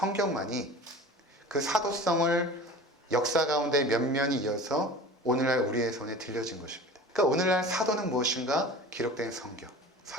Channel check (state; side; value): normal; both; correlation 0.39